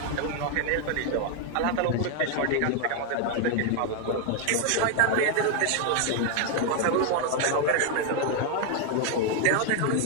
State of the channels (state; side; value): different; both; correlation 0.00